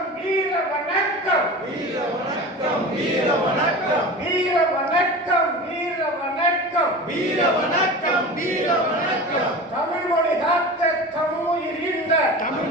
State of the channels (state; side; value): normal; both; correlation 0.33